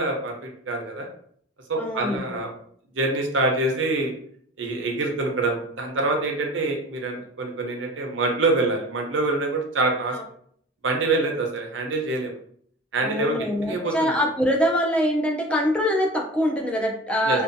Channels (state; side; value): normal; both; correlation 0.34